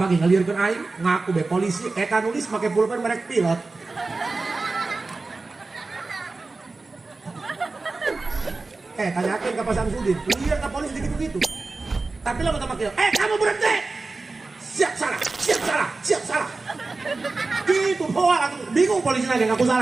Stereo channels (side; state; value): left; quieter; 3.6 dB